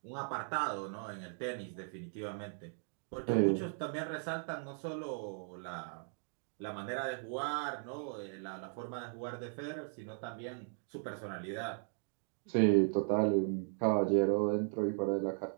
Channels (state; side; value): silent; left; 53 dB below the other